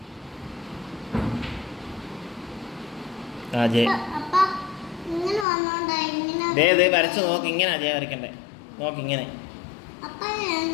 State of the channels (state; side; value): drops out; right; at 5.5 s